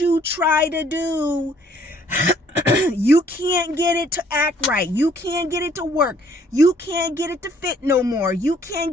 try to do, you can't get it to act right. You can't get it to work. You can't get it to fit no more. You can't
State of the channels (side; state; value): both; normal; correlation 0.62